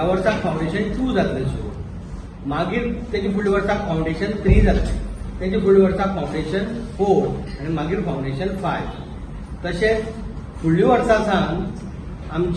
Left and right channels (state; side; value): identical; both; correlation 1.00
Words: वर्साक फावंडेशन 2 जातलें सुरू। मागीर तेजे फुडल्या वर्साक फावंडेशन 3 जातलें, तेजे फुडल्या वर्साक फावंडेशन 4 आनी मागीर फावंडेशन 5। तशेंच फुडल्या वर्सा सावन